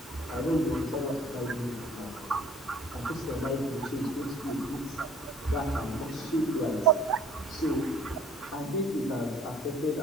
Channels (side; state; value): both; normal; correlation 0.53